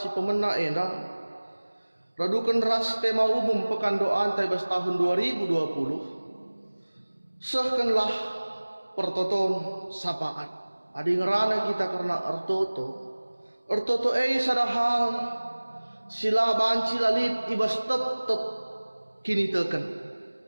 pemena ena radukan ras tema umum pekan doa anta ibas tahun 2020 sahkanlah pertoton sapaat adi ngerana kita karena ertoto sadahal sila banci lalit ibas tetep kini teken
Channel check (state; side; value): inverted; both; correlation -1.00